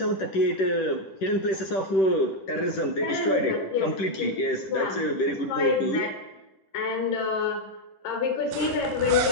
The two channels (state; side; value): late; right; 10 ms